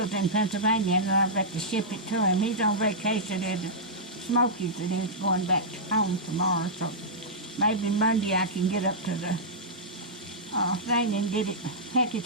in Pennsylvania, and I've got to ship it to him. He's on vacation at the Smokies, and he's going back home tomorrow. So maybe Monday I can get up to the thing and get it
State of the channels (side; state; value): both; normal; correlation -0.13